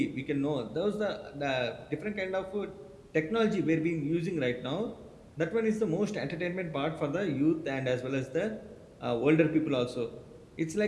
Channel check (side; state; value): both; identical; correlation 1.00